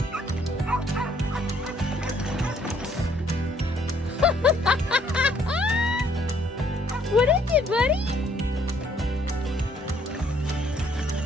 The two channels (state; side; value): normal; both; correlation 0.65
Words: What is it, buddy?